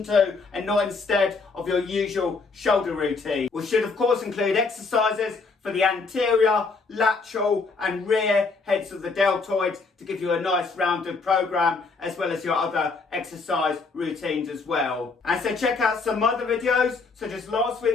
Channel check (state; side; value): quieter; right; 4.2 dB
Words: to and not instead of your usual shoulder routine, which should of course include exercises for the anterior, lateral and rear heads of the deltoid to give you a nice rounded program, as well as your other exercise routines as well. And so check out some other videos such as last